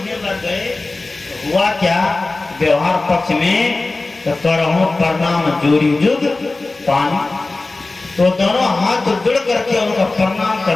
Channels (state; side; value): quieter; right; 3.3 dB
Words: लग गए, हुआ क्या? व्यवहार पक्ष में तो करहु प्रणाम जोड़ी जुग पानी। तो दोनों हाथ जुड़ करके उनका प्रणाम